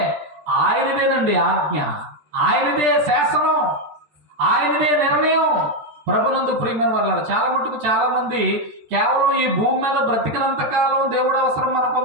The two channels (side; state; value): left; late; 13 ms